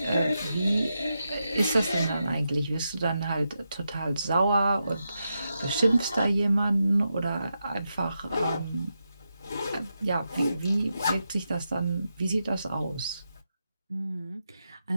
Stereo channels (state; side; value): inverted; both; correlation -0.87